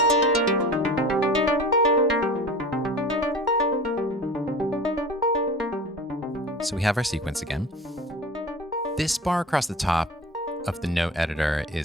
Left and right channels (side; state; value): both; normal; correlation 0.37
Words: So we have our sequence again. This bar across the top of the note editor